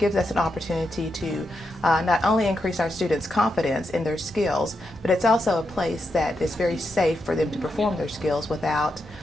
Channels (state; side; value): normal; both; correlation 0.84